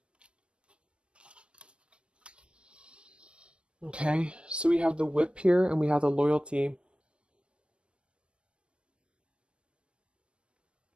Okay, so we have the Whip here and we have the Loyalty.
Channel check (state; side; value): late; left; 0.058 ms